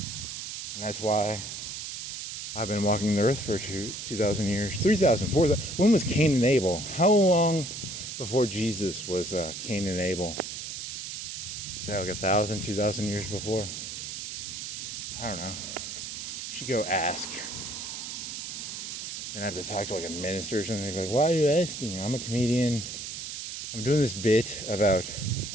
And that's why I've been walking the earth for 2,000 years, 3,000, 4,000. When was Kane and Abel? How long before Jesus was Kane and Abel? Is that like 1,000, 2,000 years before? I don't know. Should go ask. Then I have to talk to like a minister or something. They'd be like, why are you asking? I'm a comedian. I'm doing this bit about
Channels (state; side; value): noise; right; hiss, 7 dB below the sound